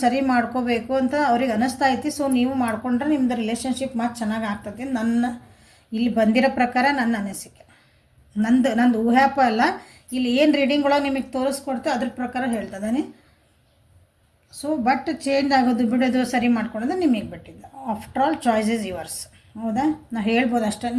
ಸರಿ ಮಾಡ್ಕೋಬೇಕು ಅಂತ ಅವ್ರಿಗೆ ಅನ್ನಿಸ್ತಾ ಐತಿ. ಸೊ ನೀವು ಮಾಡಿಕೊಂಡ್ರೆ ನಿಮ್ಮದು ರಿಲೇಷನ್ಶಿಪ್ ಮತ್ತು ಚೆನ್ನಾಗಿ ಆಗ್ತದೆ. ನನ್ನ ಇಲ್ಲಿ ಬಂದಿರೋ ಪ್ರಕಾರ ನನ್ನ ಅನಿಸಿಕೆ, ನಂದು ಊಹ್ಯಾಪ ಅಲ್ಲ, ಇಲ್ಲಿ ಏನು ರೀಡಿಂಗ್ ಒಳಗೆ ನಿಮಗೆ ತೋರಿಸ್ಕೊಡ್ತೋ ಅದ್ರ ಪ್ರಕಾರ ಹೇಳ್ತದಾನೆ. ಸೊ ಬಟ್ ಚೇಂಜ್ ಆಗೋದು ಬಿಡೋದು ಸರಿ ಮಾಡ್ಕೊಳೋದು ನಿಮಗೆ ಬಿಟ್ಟಿದ್ದು. After all choice is yours. ಹೌದಾ, ನಾ ಹೇಳ್ಬೋದು ಅಷ್ಟೇ,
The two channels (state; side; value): identical; both; correlation 1.00